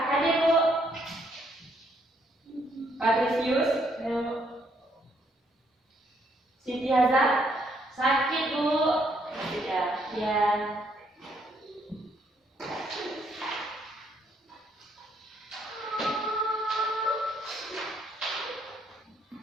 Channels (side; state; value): both; normal; correlation 0.70